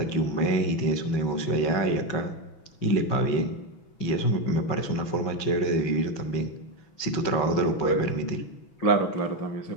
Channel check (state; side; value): late; right; 6.1 ms